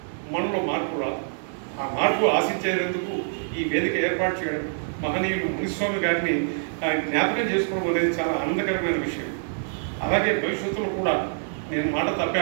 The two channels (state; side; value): silent; left; 61 dB below the other